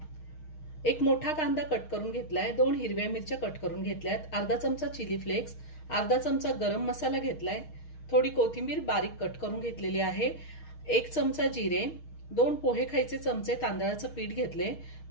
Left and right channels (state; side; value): late; right; 6.4 ms